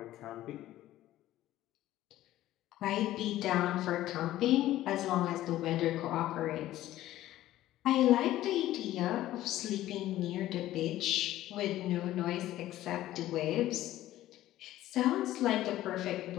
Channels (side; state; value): right; quieter; 14.5 dB